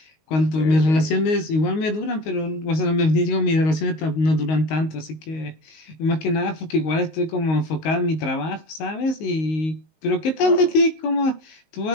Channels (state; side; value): late; right; 19 ms